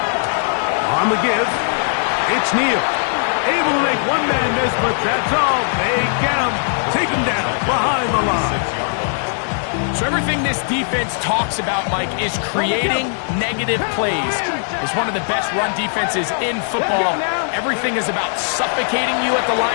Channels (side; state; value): right; silent; 60 dB below the other